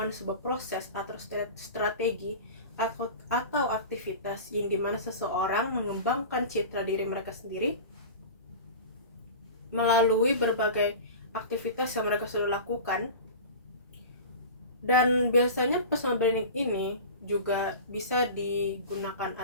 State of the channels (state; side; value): inverted; both; correlation -0.34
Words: sebuah proses atau strategi atau aktivitas yang dimana seseorang mengembangkan citra diri mereka sendiri melalui berbagai aktivitas yang mereka sudah lakukan. Dan biasanya personal branding ini juga bisa digunakan